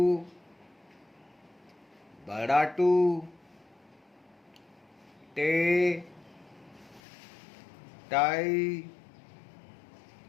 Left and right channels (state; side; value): drops out; right; at 7.0 s